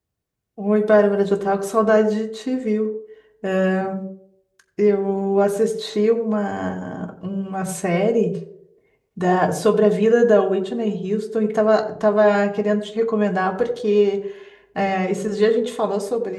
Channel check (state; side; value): identical; both; correlation 1.00